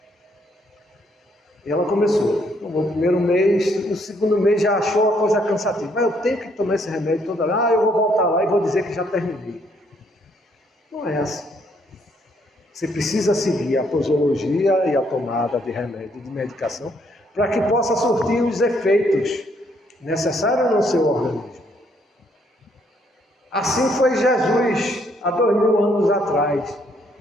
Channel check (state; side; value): normal; both; correlation 0.70